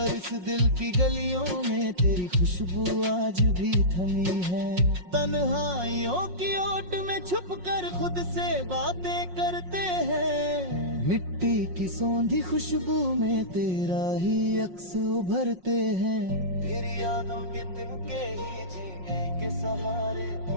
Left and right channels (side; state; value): left; late; 5.5 ms